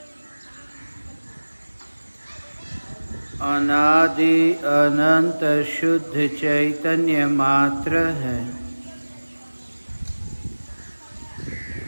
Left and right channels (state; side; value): inverted; both; correlation -1.00